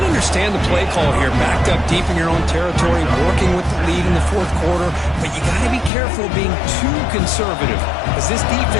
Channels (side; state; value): right; drops out; at 5.9 s